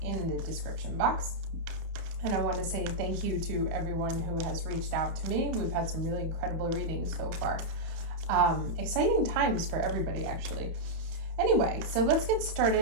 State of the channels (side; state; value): left; late; 30 ms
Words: in the description box. And I want to say thank you to everyone who has reached out to me. We've had some really incredible readings so far. Exciting times for everybody, actually. Anyway, so let's get